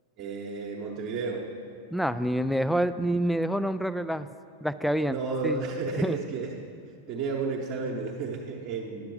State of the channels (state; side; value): normal; both; correlation 0.62